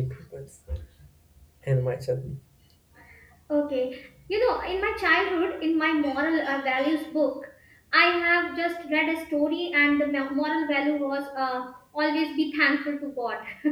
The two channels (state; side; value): identical; both; correlation 1.00